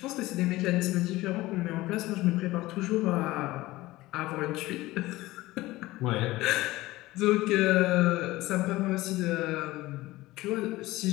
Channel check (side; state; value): right; quieter; 18.4 dB